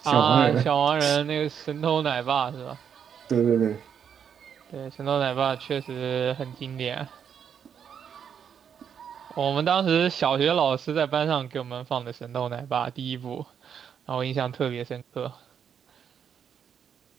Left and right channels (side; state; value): left; quieter; 7.9 dB